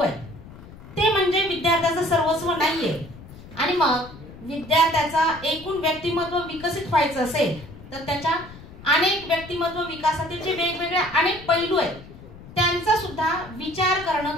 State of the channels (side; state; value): left; noise; rumble, 17 dB below the sound